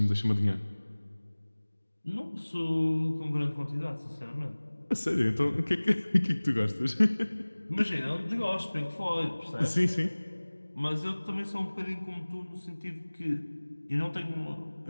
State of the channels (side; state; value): both; inverted; correlation -1.00